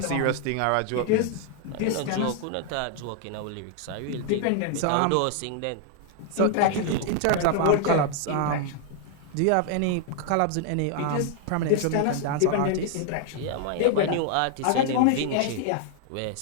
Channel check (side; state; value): both; different; correlation 0.00